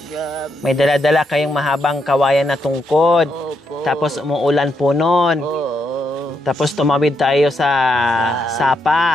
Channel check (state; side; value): normal; both; correlation 0.80